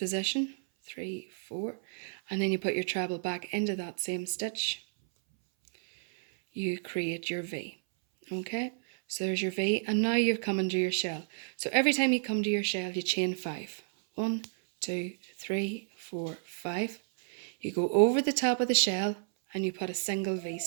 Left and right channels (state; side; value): silent; left; 57 dB below the other